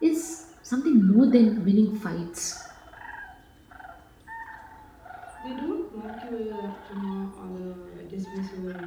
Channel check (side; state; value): both; identical; correlation 1.00